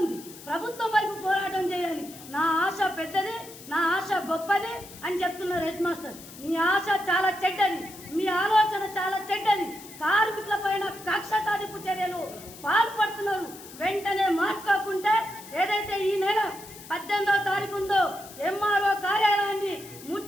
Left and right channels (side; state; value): left; noise; hiss, 17 dB below the sound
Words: ప్రభుత్వం వైపు పోరాటం చేయాలి. నా ఆశ పెద్దది, నా ఆశ గొప్పది అని చెప్తున్నారు హెడ్ మాస్టర్. మీ ఆశ చాలా చెడ్డది, మీ ఆలోచన చాలా చెడ్డది. కార్మికుల పైన కక్ష సాధింపు చర్యలు పాల్పడుతున్నారు. వెంటనే మార్చుకోకుంటే ఏదైతే ఈ నెల 18వ తారీఖు ఉందో ఎంఆర్ఓ కార్యాలయాన్ని